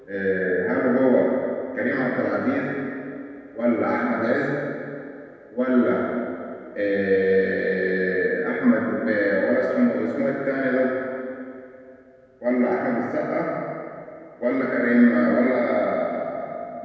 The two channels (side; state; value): both; identical; correlation 1.00